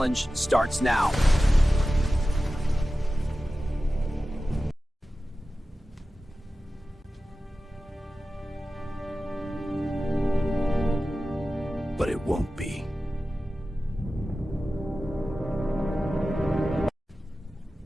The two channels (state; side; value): normal; both; correlation 0.94